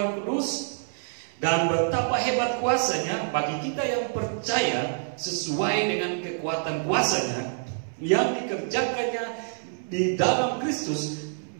kudus, dan betapa hebat kuasanya bagi kita yang percaya, sesuai dengan kekuatan kuasanya yang dikerjakannya di dalam Kristus,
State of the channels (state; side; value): silent; left; 60 dB below the other